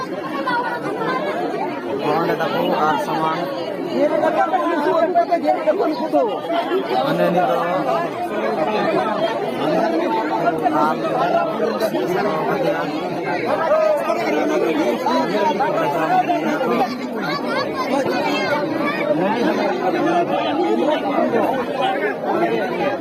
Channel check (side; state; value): both; identical; correlation 1.00